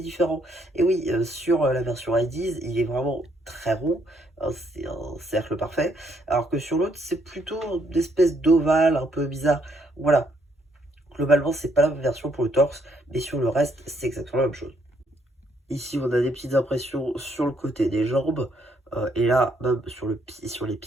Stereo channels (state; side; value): normal; both; correlation 0.71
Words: différent. Et oui, sur la version IDs, il est vraiment très rond, hein, c'est un cercle parfait. Alors que sur l'autre, c'est plutôt une espèce d'ovale un peu bizarre. Voilà, globalement, c'est pas la même version pour le torse, mais sur le reste, c'est exactement la même chose. Ici, on a des petites impressions sur le côté des jambes. Et là, même sur les